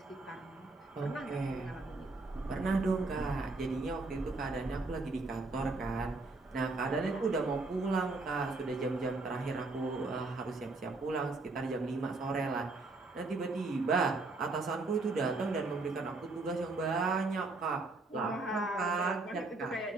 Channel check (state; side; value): quieter; left; 3.4 dB